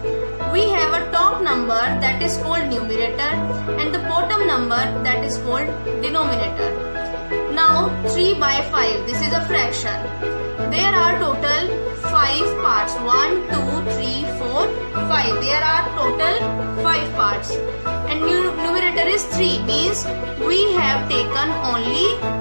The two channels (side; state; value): both; inverted; correlation -1.00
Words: We have a top number that is called numerator and the bottom number that is called denominator. Now 3 by 5, this is a fraction. There are total 5 parts. 1, 2, 3, 4, 5. There are total 5 parts. And numerator is 3, means we have taken only